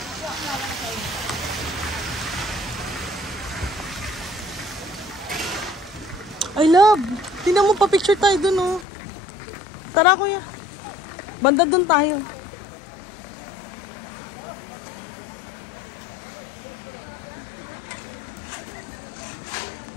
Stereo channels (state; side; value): drops out; right; at 8.8 s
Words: I love! Tingnan mo pa picture tayo dun, oh. Tara, kuya. Banda dun tayo.